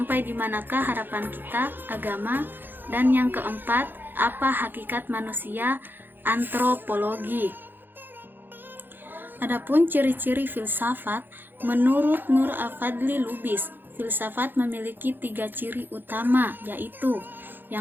di manakah harapan kita, agama, dan yang keempat, apa hakikat manusia, antropologi. Adapun ciri-ciri filsafat, menurut Nur Afadli Lubis, filsafat memiliki tiga ciri utama, yaitu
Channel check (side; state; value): left; late; 0.095 ms